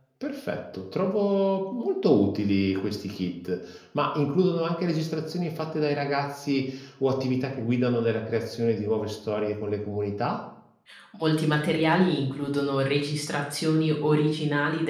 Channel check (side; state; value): both; identical; correlation 1.00